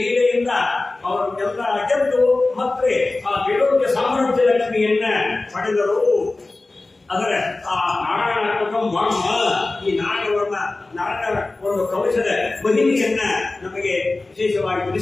ಅವರನ್ನೆಲ್ಲ ಗೆದ್ದು ಮತ್ತೆ ಆ ಗೆಲುವಿನ ಸಾಮ್ರಾಜ್ಯ ಲಕ್ಷ್ಮಿಯನ್ನ ಪಡೆದರು. ಅದರ ಆ ನಾರಾಯಣಾತ್ಮಕ ವರ್ಮ, ಈ ನಾರಾಯಣ ಒಂದು ಕವಚದ ಮಹಿಮೆಯನ್ನ ನಮಗೆ ವಿಶೇಷವಾಗಿ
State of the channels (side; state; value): right; quieter; 3.2 dB